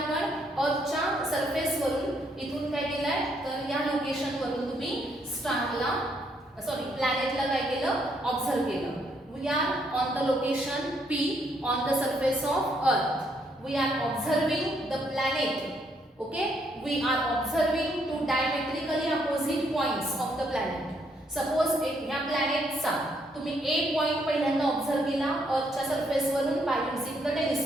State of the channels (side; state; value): both; normal; correlation 0.72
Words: अर्थच्या सरफेस वरून इथून काय केलंय, तर या लोकेशन वरून तुम्ही स्टारला प्लॅनेटला काय केलं? ऑब्झर्व केलं. We are on the location P on the surface of earth. We are observing the planet. Okay, we are observing two diametrically opposite points of the planet. Suppose या प्लॅनेटचा तुम्ही A पॉइंट पहिल्यांदा observe केला अर्थच्या surface वरून by using the